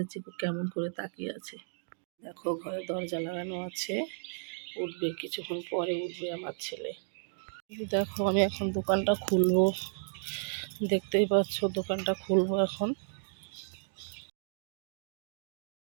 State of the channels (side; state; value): left; silent; digital silence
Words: চিকু কেমন করে তাকিয়ে আছে। দেখো ঘরে দরজা লাগানো আছে, উঠবে কিছুক্ষণ পরে, উঠবে আমার ছেলে। দেখো আমি এখন দোকানটা খুলবো, দেখতেই পাচ্ছ দোকানটা খুলবো এখন।